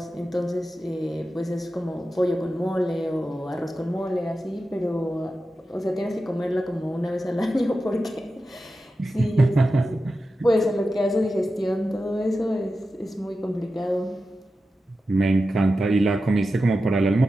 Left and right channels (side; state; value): both; normal; correlation 0.92